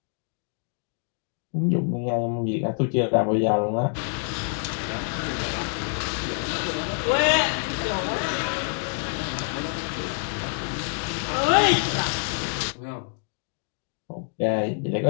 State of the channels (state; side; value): silent; right; 57 dB below the other